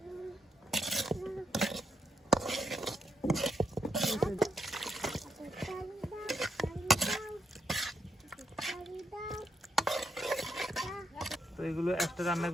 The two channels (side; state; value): both; normal; correlation 0.79